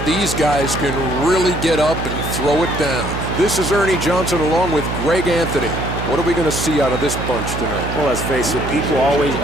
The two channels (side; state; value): right; noise; hum, 5 dB below the sound